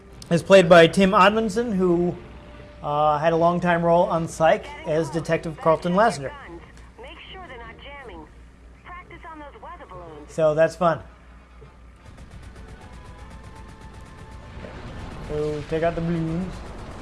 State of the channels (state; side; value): identical; both; correlation 1.00